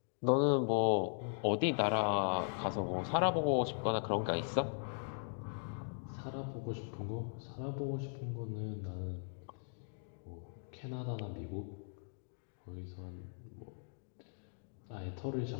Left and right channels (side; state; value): right; silent; digital silence